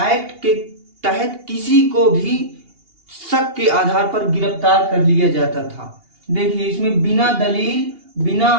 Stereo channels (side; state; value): left; late; 2.8 ms